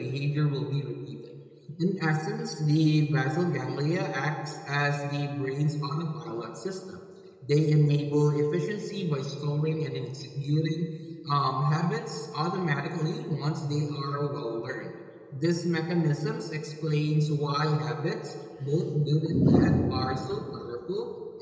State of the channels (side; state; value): both; identical; correlation 1.00